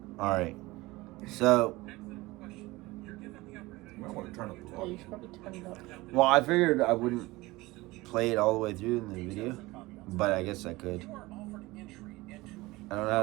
Alright. So. You might want to turn up the Yeah, you volume. should probably turn it up. Well, I figured I wouldn't play it all the way through in the video, but I guess I could. I don't know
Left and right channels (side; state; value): left; quieter; 20.6 dB